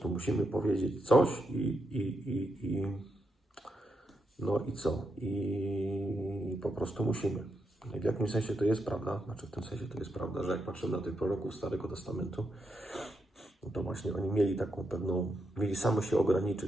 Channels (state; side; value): normal; both; correlation 0.83